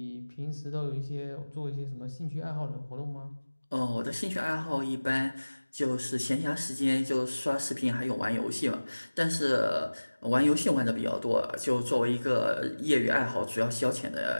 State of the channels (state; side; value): inverted; both; correlation -1.00